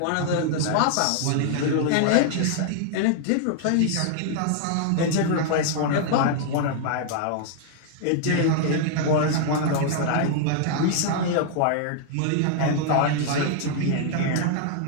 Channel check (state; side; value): different; both; correlation -0.01